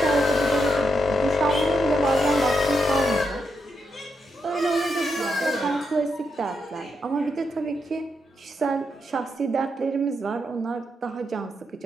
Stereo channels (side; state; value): both; normal; correlation 0.81